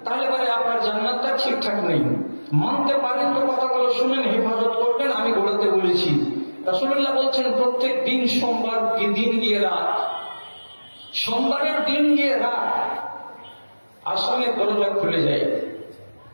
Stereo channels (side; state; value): both; inverted; correlation -1.00